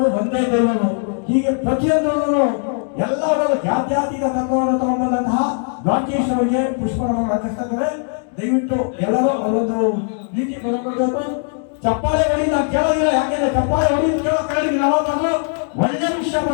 ಒಂದೇ ದೇವರು, ಹೀಗೆ ಪ್ರತಿಯೊಂದು ಎಲ್ಲರೂ ಜಾತ್ಯಾತೀತ ತತ್ವವನ್ನು ತಗೊಂಡಂತಹ ರಾಕೇಶ್ ಅವರಿಗೆ ಪುಷ್ಪವನ್ನು ಅರ್ಪಿಸ್ತಾ ಇದ್ದಾರೆ. ದಯವಿಟ್ಟು ಎಲ್ಲರೂ ಅವರೊಂದು ರೀತಿ ಕೊಡಬೇಕು. ಚಪ್ಪಾಳೆ ಹೊಡಿ ನಾವು ಕೇಳೋದಿಲ್ಲ, ಯಾಕೆಂದ್ರೆ ಚಪ್ಪಾಳೆ ಹೊಡಿ ಕೇಳೋ ಕೇಳಿದ್ವಿ ನಾವು. ಒಳ್ಳೆ ವಿಷಯ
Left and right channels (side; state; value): right; silent; 56 dB below the other